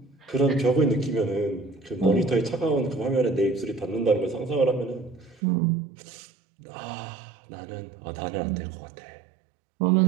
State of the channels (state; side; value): drops out; left; at 5.4 s